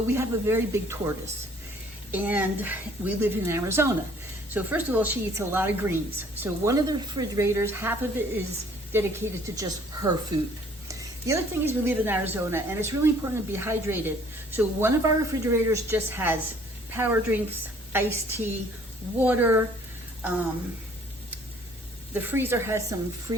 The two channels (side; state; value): both; normal; correlation 0.58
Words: we have a very big tortoise, and we live in Arizona. So first of all, she eats a lot of greens. So one of the refrigerators, half of it is dedicated to just her food. The other thing is we live in Arizona, and it's really important to be hydrated. So one of our refrigerators just has power drinks, iced tea, water. The freezer has some